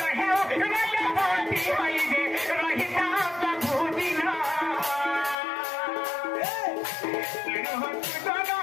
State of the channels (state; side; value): drops out; right; at 5.4 s